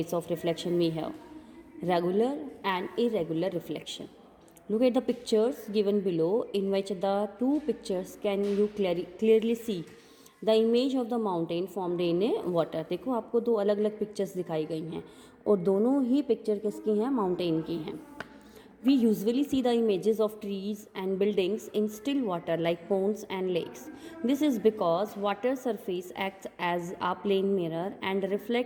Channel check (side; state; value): both; identical; correlation 1.00